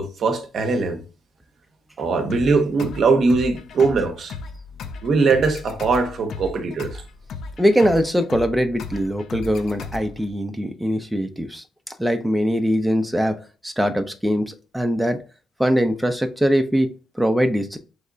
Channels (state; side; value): normal; both; correlation 0.87